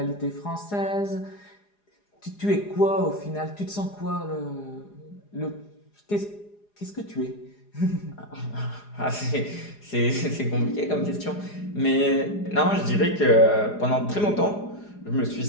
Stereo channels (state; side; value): late; right; 4.9 ms